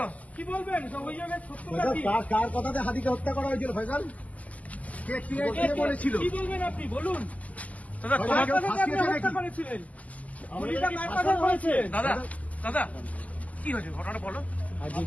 কি বলবেন সব অভিযোগের সত্যতা কি? কার কথাতে হাতিকে হত্যা করা হয়েছিল ফয়সাল? কে বলেছিল? কি বলবেন আপনি বলুন? দাদা ফয়সাল, তোমার কেউ কার কথাতে আপনি ফাঁসিয়েছে হত্যা নাকি? করেছিলেন? গুলিটা কার কথায় হয়েছে? দাদা দাদা কি হয়েছে ঘটনাটা বলো। আজই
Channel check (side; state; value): right; late; 0.074 ms